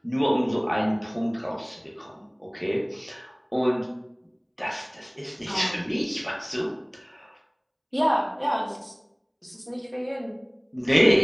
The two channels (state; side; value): identical; both; correlation 1.00